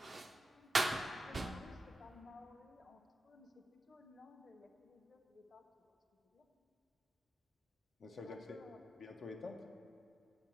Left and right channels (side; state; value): both; normal; correlation 0.90